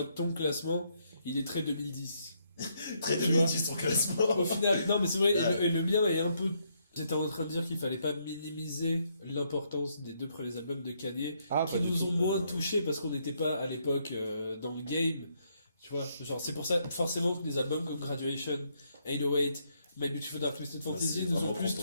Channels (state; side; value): inverted; both; correlation -0.74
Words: ton classement, il est très 2010. Très Tu vois. 2010 ton classement. Au final, non mais c'est vrai, Ouais. et le mien est un peu. J'étais en train de dire qu'il fallait pas minimiser l'importance des 2 premiers albums de Kanye, qui nous ont moins touchés parce qu'on n'était pas à l'époque dans le game. Tu vois, genre c'est pour ça, forcément, que des albums comme Graduation, 808, My Beautiful Dark Twisted Fantasy c'est nous ont vraiment plus